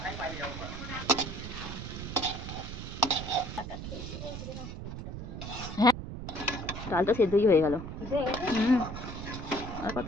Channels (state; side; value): noise; right; rumble, 8 dB below the sound